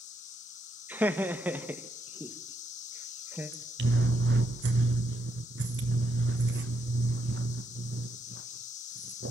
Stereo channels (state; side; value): normal; both; correlation 0.78